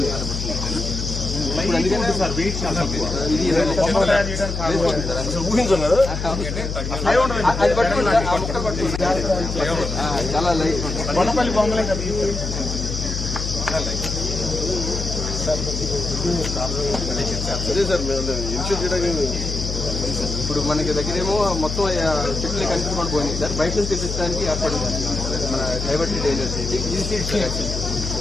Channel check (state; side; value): noise; left; hum, 4 dB below the sound